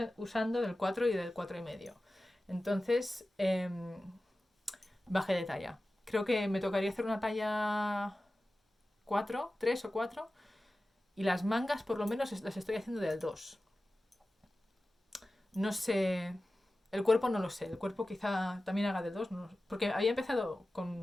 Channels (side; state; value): both; normal; correlation 0.95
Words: usando del 4 y del 4,5. Entonces, bajé de talla. Creo que me tocaría hacer una talla 4, 3 o 4. Y las mangas por lo menos las estoy haciendo del 2. No sé. El cuerpo no lo sé. El cuerpo quizá también haga del 2. No, porque había empezado